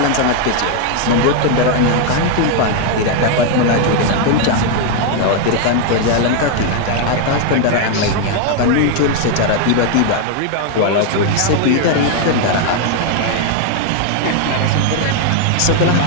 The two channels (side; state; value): both; different; correlation 0.01